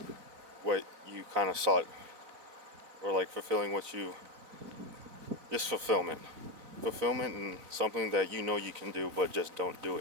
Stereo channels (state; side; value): late; left; 3.9 ms